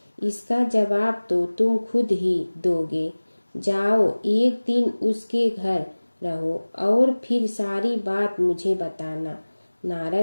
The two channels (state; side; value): inverted; both; correlation -1.00